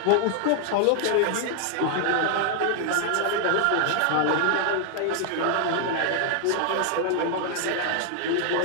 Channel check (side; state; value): both; different; correlation 0.00